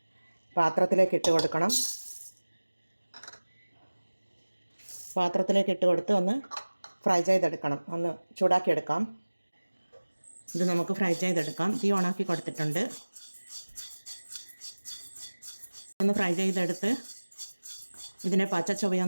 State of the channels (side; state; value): both; inverted; correlation -1.00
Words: പാത്രത്തിലേക്ക് ഇട്ട് കൊടുക്കണം. പാത്രത്തിലേക്ക് ഇട്ട് കൊടുത്ത് ഒന്ന് ഫ്രൈ ചെയ്തെടുക്കണം, ഒന്ന് ചൂടാക്കിയെടുക്കാം. ഇത് നമുക്ക് ഫ്രൈ ചെയ്തെടുക്കാം. തീ ഓണാക്കി കൊടുത്തിട്ടുണ്ട്. ഒന്ന് ഫ്രൈ ചെയ്തെടുത്ത് ഇതിനെ പച്ച